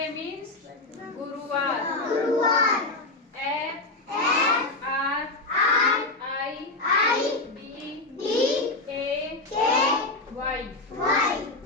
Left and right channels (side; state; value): right; quieter; 3.0 dB